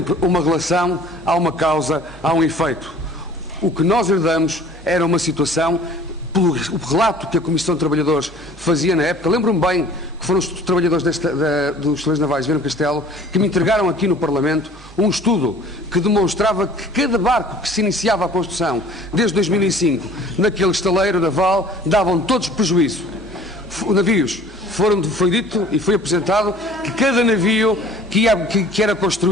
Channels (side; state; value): both; normal; correlation 0.49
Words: uma relação, há uma causa, há um efeito. O que nós herdamos era uma situação, pelo relato que a Comissão de Trabalhadores fazia na época, lembro-me bem que foram os trabalhadores dos Estaleiros Navais de Viana do Castelo que me entregaram aqui no Parlamento um estudo que demonstrava que cada barco que se iniciava a construção desde 2005 naquele estaleiro naval davam todos prejuízo. Navios, foi dito e foi apresentado que cada navio que era